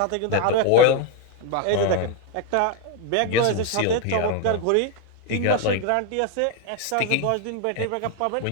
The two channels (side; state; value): both; different; correlation 0.01